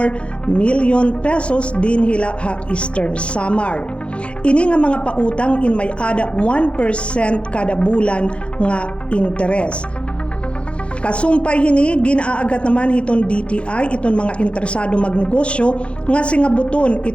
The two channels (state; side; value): late; right; 0.059 ms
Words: million pesos din hila ha Eastern Samar. Ini nga mga pautang in may ada 1% kada bulan nga interes. Kasumpay hini ginaagat naman hiton DTI iton mga interesado magnegosyo nga singabuton